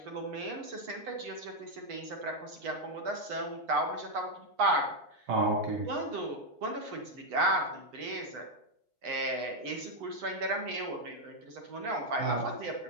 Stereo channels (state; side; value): late; left; 8.8 ms